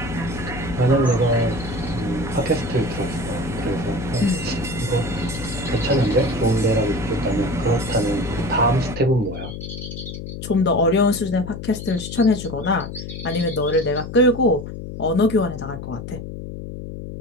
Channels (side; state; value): left; noise; hum, 9 dB below the sound